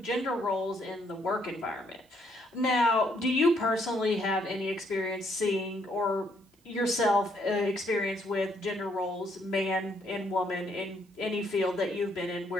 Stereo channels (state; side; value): normal; both; correlation 0.71